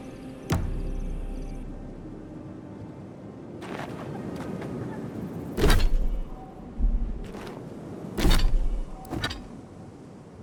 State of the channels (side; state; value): both; identical; correlation 1.00